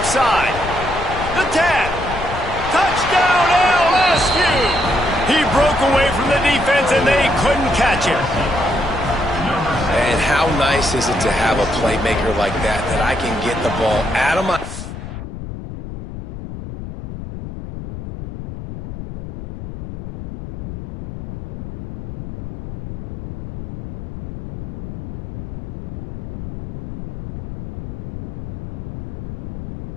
side. The 10. Touchdown, LSU. He broke away from the defense, and they couldn't catch him. And how nice is it to have a playmaker like that I can get the ball out of my...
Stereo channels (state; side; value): noise; left; rumble, 10 dB below the sound